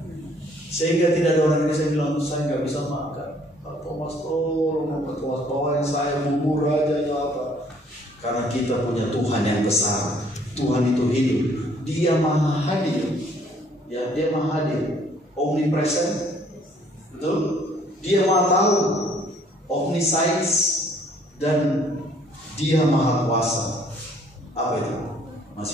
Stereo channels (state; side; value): normal; both; correlation 0.61